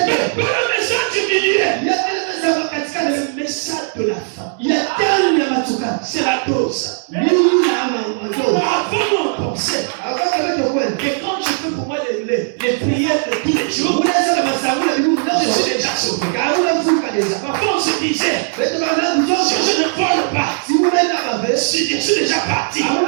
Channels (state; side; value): silent; left; 62 dB below the other